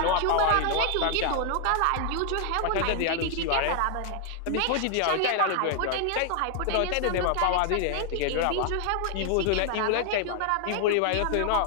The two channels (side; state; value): both; different; correlation 0.00